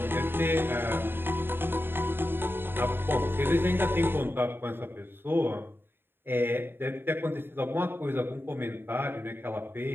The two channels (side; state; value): left; late; 0.10 ms